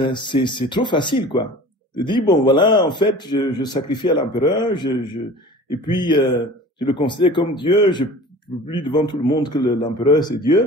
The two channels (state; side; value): normal; both; correlation 0.41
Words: c'est trop facile, quoi. De dire, bon, voilà, en fait, je sacrifie à l'empereur, et puis, je le considère comme Dieu, je publie devant tout le monde que l'empereur, c'est